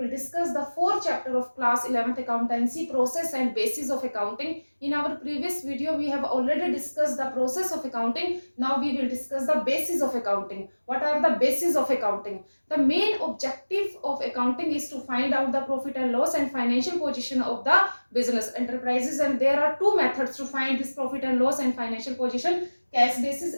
discuss the fourth chapter of class 11th accountancy, process and basis of accounting. In our previous video we have already discussed the process of accounting. Now we will discuss the basis of accounting. What are the basis of accounting? The main objective of accounting is to find out the profit and loss and financial position of the business enterprises, and there are two methods to find this profit and loss and financial position: cash basis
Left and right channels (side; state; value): both; inverted; correlation -1.00